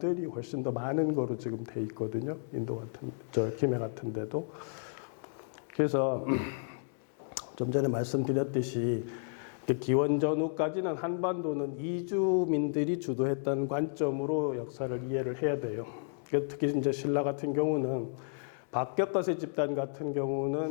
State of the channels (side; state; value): right; silent; digital silence